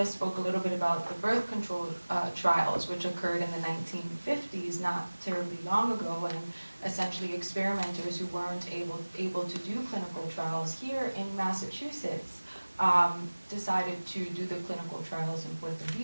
spoke a little bit about the birth control trials, which occurred in the 1950s, not terribly long ago, and essentially experimenters who weren't able to do clinical trials here in Massachusetts decided to do the clinical trials in Puerto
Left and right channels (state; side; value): inverted; both; correlation -1.00